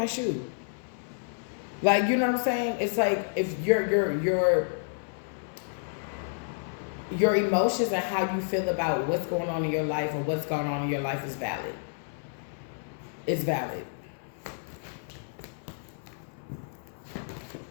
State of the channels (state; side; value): silent; right; 58 dB below the other